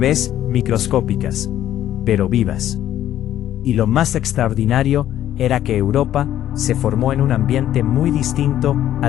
microscópicas, pero vivas. Y lo más extraordinario era que Europa se formó en un ambiente muy distinto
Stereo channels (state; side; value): quieter; right; 12.0 dB